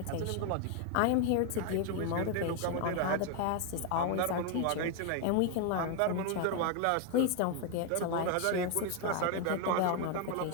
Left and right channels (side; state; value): both; different; correlation 0.01